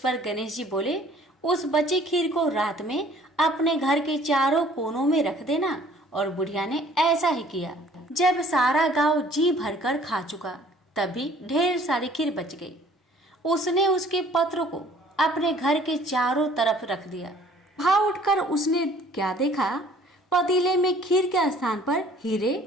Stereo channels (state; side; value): normal; both; correlation 0.55